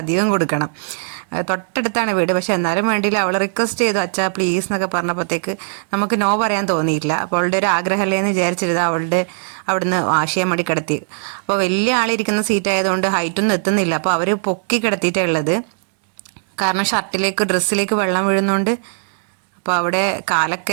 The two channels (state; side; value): silent; left; digital silence